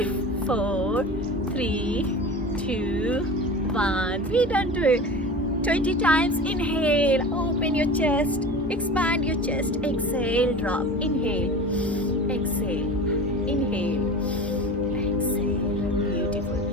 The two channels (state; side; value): normal; both; correlation 0.34